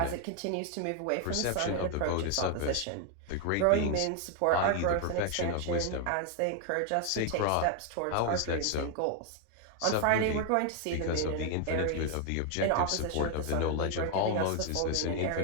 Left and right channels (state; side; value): different; both; correlation 0.00